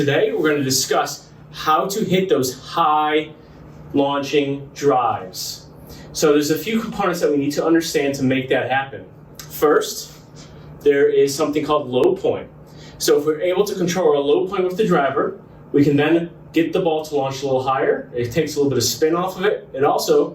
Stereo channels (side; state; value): both; identical; correlation 1.00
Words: we're going to discuss how to hit those high launching drives. So there's a few components that we need to understand to make that happen. First, there is something called low point. So if we're able to control our low point with the driver, we can then get the ball to launch a little higher. It takes a little bit of spin off of it. It